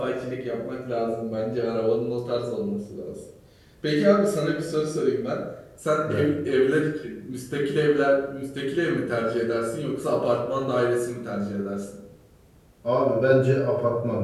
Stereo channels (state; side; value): identical; both; correlation 1.00